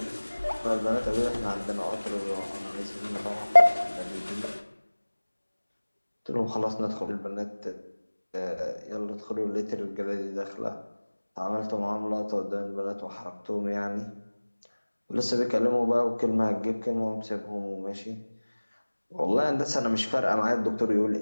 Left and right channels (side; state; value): both; inverted; correlation -1.00